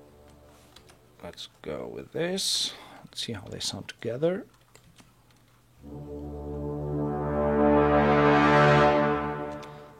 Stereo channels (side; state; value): both; identical; correlation 1.00